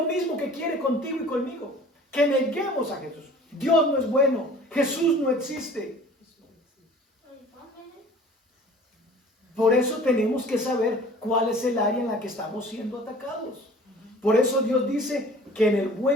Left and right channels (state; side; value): normal; both; correlation 0.47